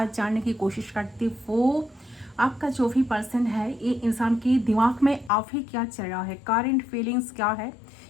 जानने की कोशिश करती हूँ आपका जो भी पर्सन है, ये इंसान के दिमाग में अभी क्या चल रहा है, करंट फीलिंग्स क्या है,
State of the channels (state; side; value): drops out; right; at 5.3 s